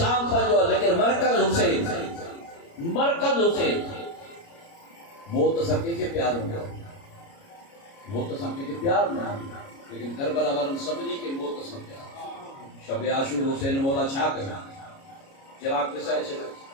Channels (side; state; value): right; late; 29 ms